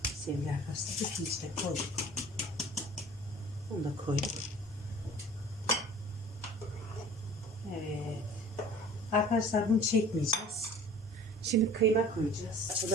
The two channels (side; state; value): both; normal; correlation 0.46